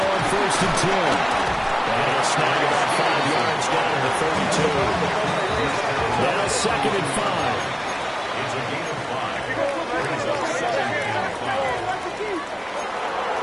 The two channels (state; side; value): identical; both; correlation 1.00